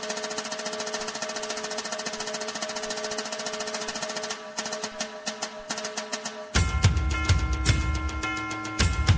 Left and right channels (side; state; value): both; identical; correlation 1.00